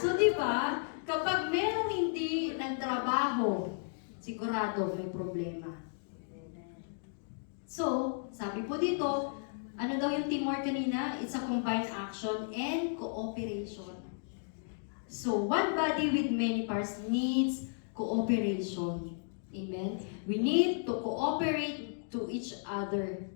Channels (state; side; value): silent; right; digital silence